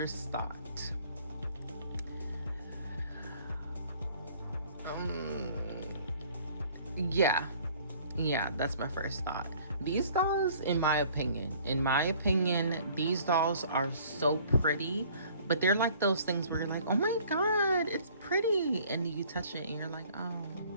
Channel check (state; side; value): inverted; both; correlation -0.55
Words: thought. Yeah, that's my first thought. These dolls, in my opinion, these dolls are so pretty, but they're like those things where you're like, oh my God, it's pretty. And you touch it and you're like, oh,